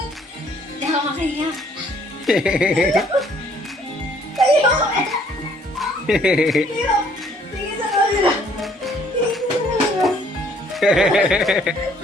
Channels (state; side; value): normal; both; correlation 0.62